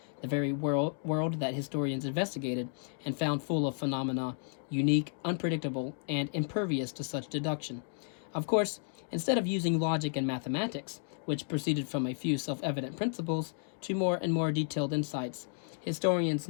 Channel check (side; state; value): right; silent; 56 dB below the other